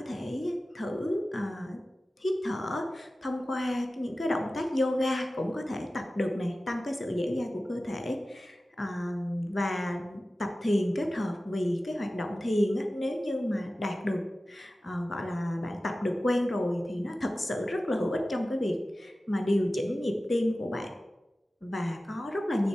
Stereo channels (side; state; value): both; normal; correlation 0.96